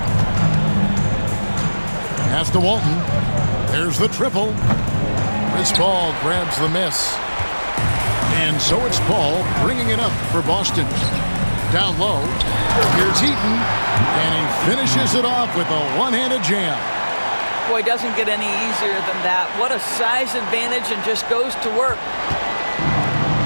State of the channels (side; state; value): both; inverted; correlation -1.00